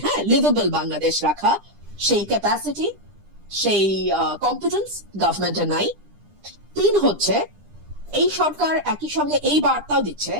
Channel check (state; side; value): late; left; 9.9 ms